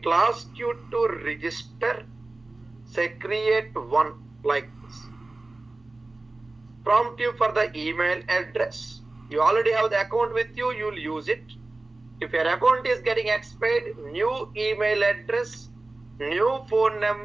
will ask you to register. Say create one like this. Prompt you for the email address. You already have the account with you, you will use it. If your account is getting expired, new email address, new phone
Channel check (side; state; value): left; quieter; 3.1 dB